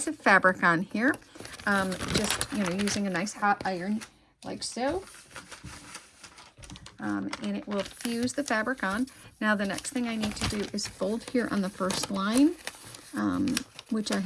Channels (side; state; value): both; identical; correlation 1.00